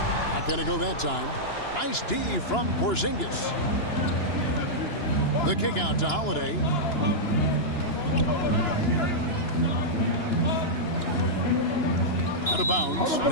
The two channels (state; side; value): late; right; 2.9 ms